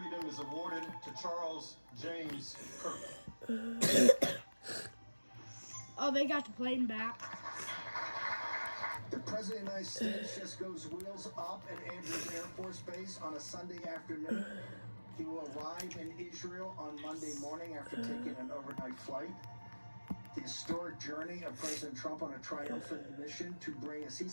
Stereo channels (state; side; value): inverted; both; correlation -1.00